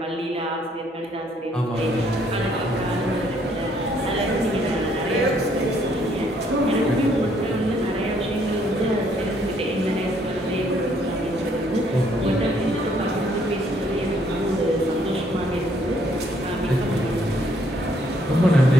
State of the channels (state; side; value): normal; both; correlation 0.67